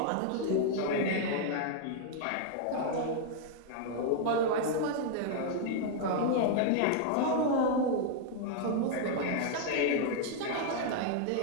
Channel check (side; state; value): both; different; correlation -0.01